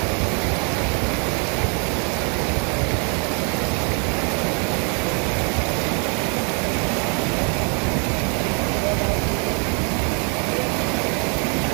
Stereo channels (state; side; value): quieter; left; 37.7 dB